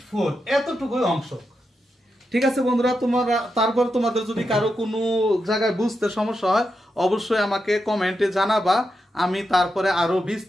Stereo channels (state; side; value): normal; both; correlation 0.86